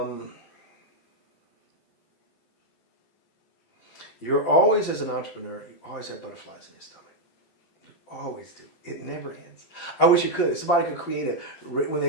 You're always, as an entrepreneur, you always have butterflies in your stomach. You always do. It never ends. I wish it could. If somebody could create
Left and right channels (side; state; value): right; late; 12 ms